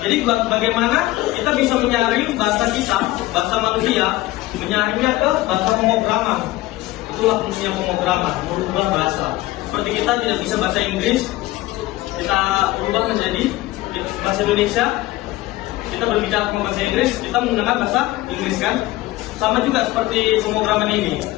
Jadi bagaimana kita bisa menyaring bahasa kita, bahasa manusia, menyaringnya ke bahasa pemrograman. Itulah fungsinya pemrograman, merubah bahasa. Seperti kita tidak bisa bahasa Inggris, kita ubah menjadi bahasa Indonesia. Kita berbicara dengan bahasa Inggris, kita menggunakan bahasa Inggris kan. Sama juga seperti pemrograman ini.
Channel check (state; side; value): quieter; right; 17.7 dB